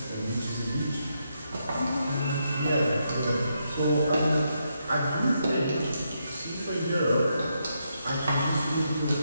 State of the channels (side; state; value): both; inverted; correlation -0.81